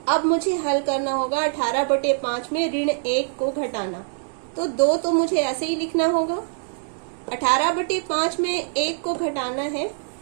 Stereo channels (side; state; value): left; silent; digital silence